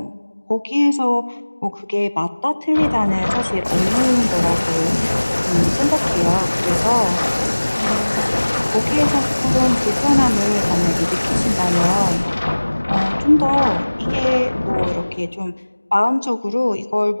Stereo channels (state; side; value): inverted; both; correlation -1.00